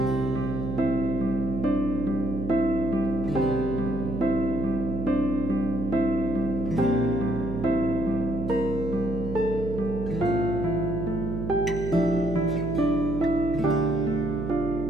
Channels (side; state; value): right; noise; hum, 6 dB below the sound